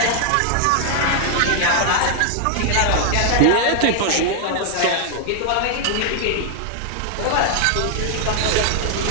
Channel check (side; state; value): both; different; correlation 0.00